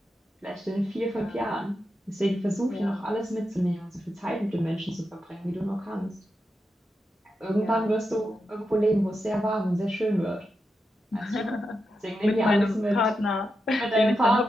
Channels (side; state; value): both; normal; correlation 0.87